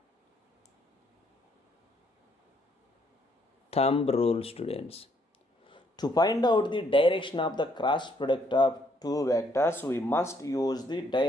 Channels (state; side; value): normal; both; correlation 0.69